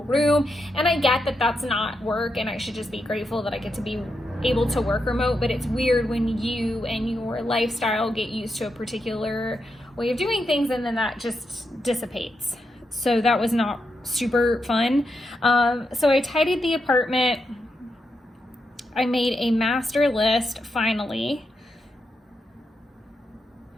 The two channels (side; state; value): both; normal; correlation 0.84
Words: room, and I get that that's not work and I should just be grateful that I get to be able to work remote, but it's weird when you and your lifestyle get used to a particular way of doing things and then that just dissipates. So that was not super fun. So I tidied the apartment. I made a master list finally.